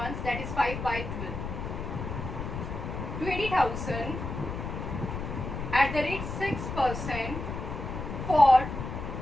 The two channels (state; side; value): noise; left; rumble, 5 dB below the sound